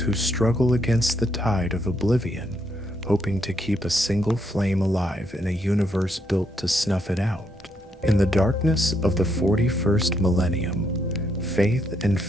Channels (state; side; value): normal; both; correlation 0.75